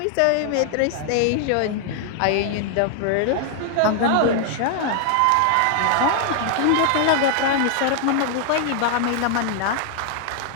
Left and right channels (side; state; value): both; different; correlation 0.00